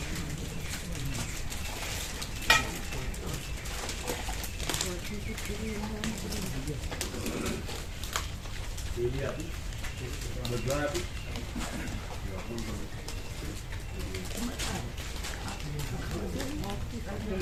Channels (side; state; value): both; identical; correlation 1.00